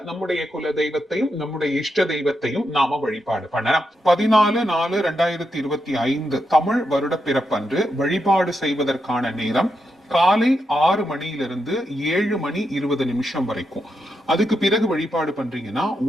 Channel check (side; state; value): both; normal; correlation 0.84